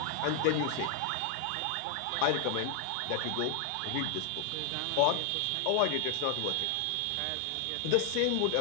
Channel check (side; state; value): both; different; correlation 0.00